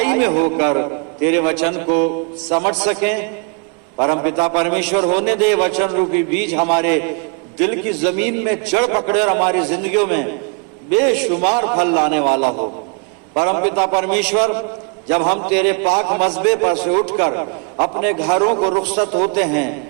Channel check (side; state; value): left; quieter; 36.5 dB